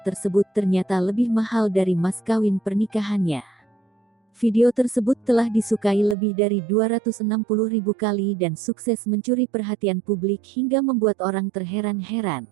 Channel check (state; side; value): drops out; left; at 6.2 s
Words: ternyata lebih mahal dari mas kawin pernikahannya. Video tersebut telah disukai lebih dari 260.000 kali dan sukses mencuri perhatian publik hingga membuat orang terheran-heran.